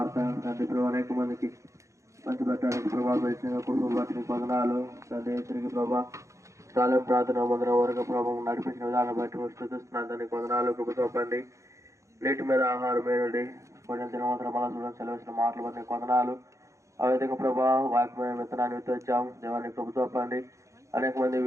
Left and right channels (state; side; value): late; left; 0.15 ms